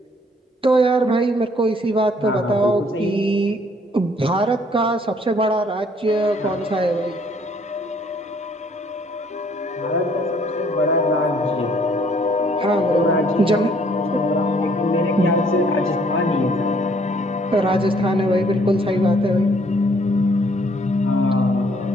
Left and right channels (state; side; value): normal; both; correlation 0.63